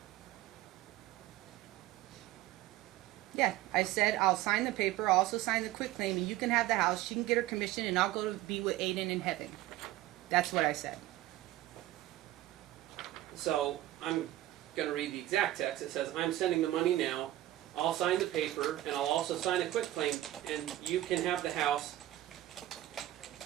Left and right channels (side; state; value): left; quieter; 15.2 dB